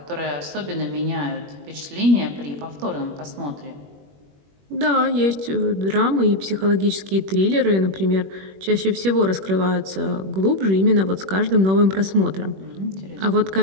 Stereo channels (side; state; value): left; late; 21 ms